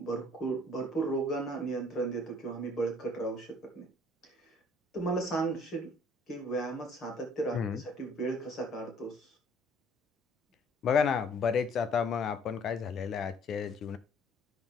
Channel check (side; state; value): both; normal; correlation 0.57